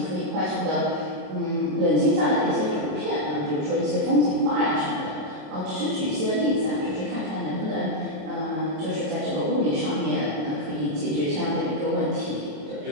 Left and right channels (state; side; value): late; left; 26 ms